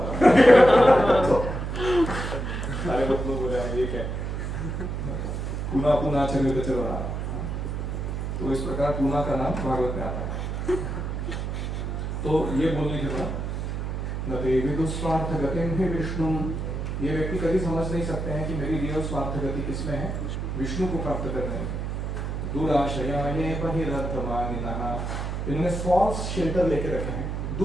सारे लोग बोले ये क्या, पुनः पुनः चरवित चरवणाना। तो इस प्रकार पुनः का नाम भागवत में आता है। तो ये बोलने के बाद न ते विदुस्वार्थ गतिम ही विष्णु, ये व्यक्ति कभी समझ नहीं सकते हैं कि मेरी रियल स्वार्थ गति किसमें है, विष्णु को प्राप्त करने में। दुराशया ये बहिरर्थमानिनः, इन्होंने फॉल्स शेल्टर लेके रखे हैं।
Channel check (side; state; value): right; noise; hum, 3 dB below the sound